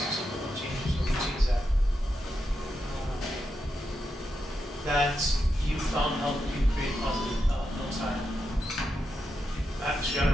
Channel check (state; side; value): normal; both; correlation 0.86